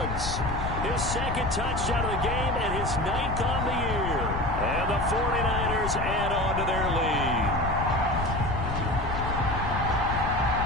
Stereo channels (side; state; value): left; noise; rumble, 4 dB below the sound